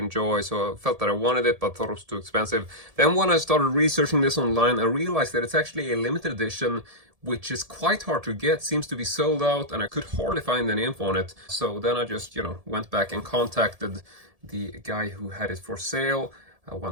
so I felt that I wanted it but thought it was too expensive. Then when I started researching this online, I realized that it's actually a limited edition, which is quite hard to get, seems to be sold out, and I could hardly find any info on it. So then I just, went back and contacted the guy who had it for sale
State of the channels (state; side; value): late; left; 1.7 ms